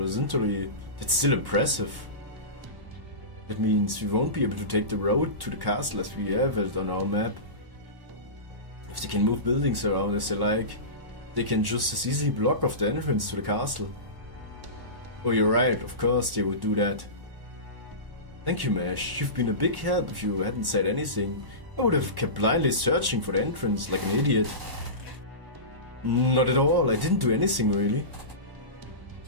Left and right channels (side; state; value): left; late; 1.1 ms